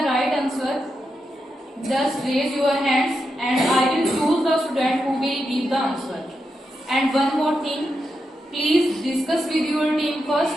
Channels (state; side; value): normal; both; correlation 0.86